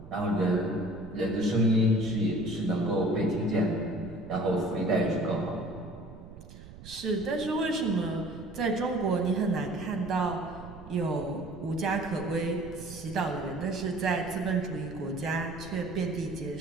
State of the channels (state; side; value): noise; right; rumble, 16 dB below the sound